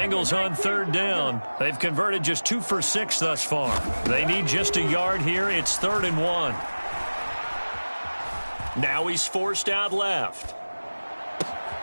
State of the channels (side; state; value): both; inverted; correlation -1.00